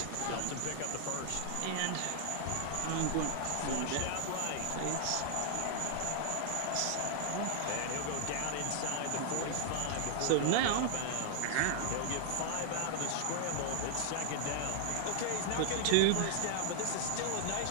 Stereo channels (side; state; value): both; different; correlation 0.00